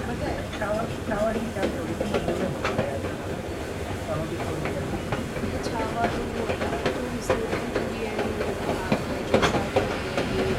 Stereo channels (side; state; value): both; identical; correlation 1.00